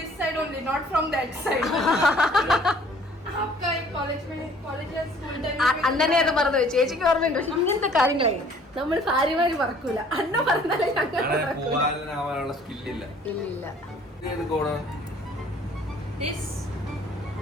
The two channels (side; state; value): both; normal; correlation 0.56